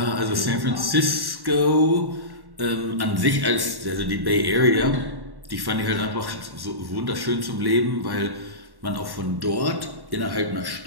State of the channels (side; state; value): left; late; 1.1 ms